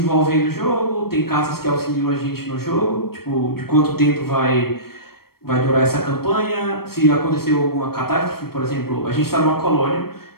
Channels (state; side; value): late; right; 0.94 ms